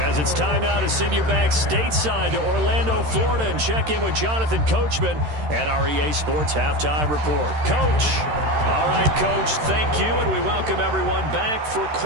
it's time now to send you back stateside to Orlando, Florida, and check in with Jonathan Coachman at our EA Sports Halftime Report. Coach. All right, Coach, thank you, and we welcome everyone back for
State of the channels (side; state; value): left; late; 13 ms